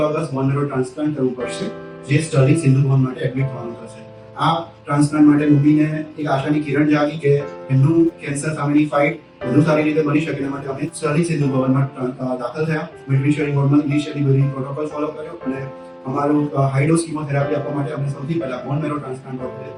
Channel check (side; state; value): both; identical; correlation 1.00